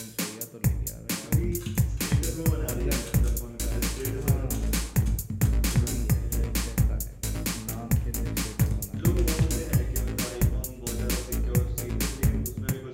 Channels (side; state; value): both; identical; correlation 1.00